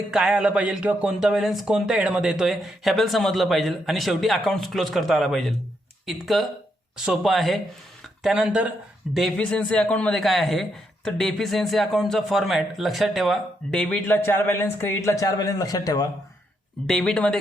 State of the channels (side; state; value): both; normal; correlation 0.78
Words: काय आलं पाहिजे किंवा कोणता बॅलन्स कोणत्या हेडमध्ये येतोय हे आपल्याला समजलं पाहिजे आणि शेवटी अकाउंट्स क्लोज करता आला पाहिजे. इतकं सोपं आहे. त्यानंतर डेफिशियन्सी अकाउंटमध्ये काय आहे, तर डेफिशियन्सी अकाउंटचा फॉर्मॅट लक्षात ठेवा. डेबिटला 4 बॅलन्स, क्रेडिटला 4 बॅलन्स लक्षात ठेवा. डेबिटमध्ये